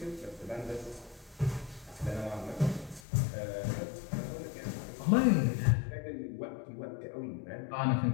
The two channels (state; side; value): drops out; right; at 3.0 s